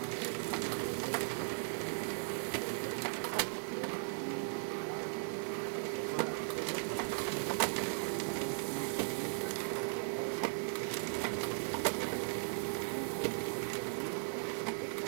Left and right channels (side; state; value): left; silent; digital silence